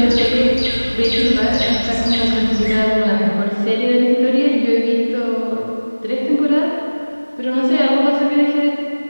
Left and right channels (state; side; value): inverted; both; correlation -1.00